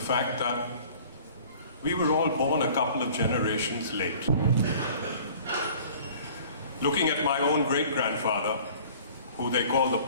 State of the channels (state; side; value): inverted; both; correlation -0.49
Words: that we were all born a couple of generations late. Looking at my own great-grandfather, who they call the